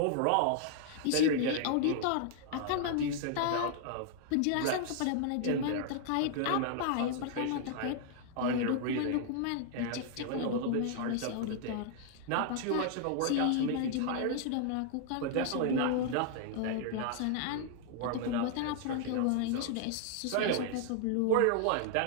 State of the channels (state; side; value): different; both; correlation 0.00